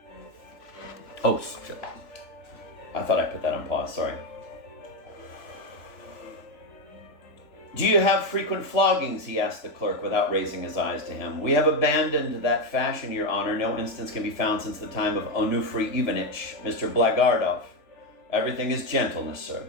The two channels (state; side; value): late; right; 3.4 ms